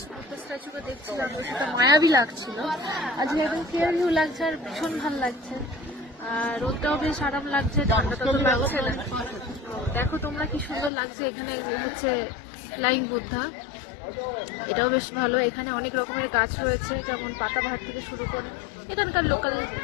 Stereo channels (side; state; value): right; drops out; at 10.9 s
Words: বুদ্ধ স্ট্যাচুকে দেখছিলাম, তো সেটা মায়াবী লাগছিল। আজকে একদম ক্লিয়ার ভিউ লাগছে আর ভীষণ ভালো লাগছে। আর রোদটাও বেশ আরাম লাগছে, ঠান্ডাটা তো লাগছে না। দেখো তোমরা কি সুন্দর লাগছে। এখানে হচ্ছে ফ্লাইং বুদ্ধা, এটাও বেশ ভালো। এখানে অনেক রকমের গাছ রয়েছে, যেমন পাতাবাহার থেকে শুরু করে এখানকার লোকাল